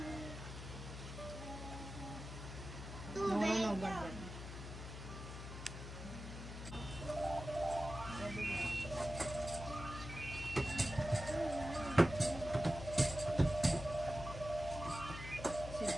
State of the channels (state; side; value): noise; left; hum, 9 dB below the sound